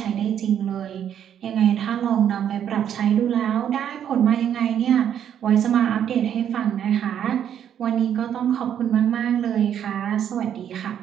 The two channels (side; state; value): left; quieter; 9.5 dB